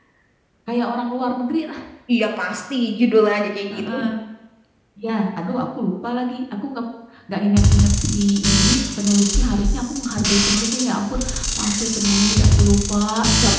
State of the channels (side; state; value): both; identical; correlation 1.00